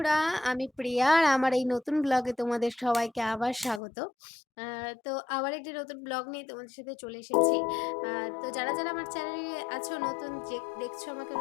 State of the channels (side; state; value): right; drops out; at 3.8 s